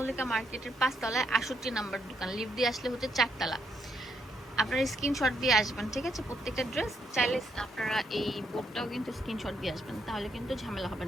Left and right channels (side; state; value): both; normal; correlation 0.76